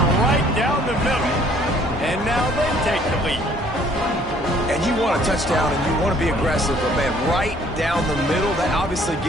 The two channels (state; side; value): noise; right; hum, 18 dB below the sound